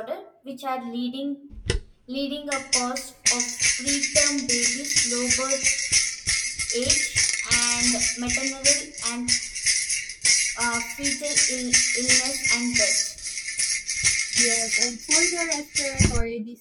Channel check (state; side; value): identical; both; correlation 1.00